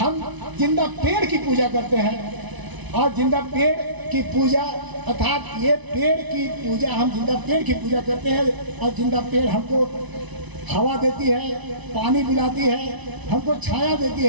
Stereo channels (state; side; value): late; left; 1.0 ms